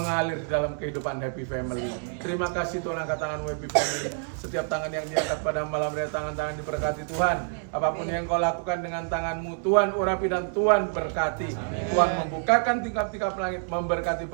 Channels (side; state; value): left; silent; 60 dB below the other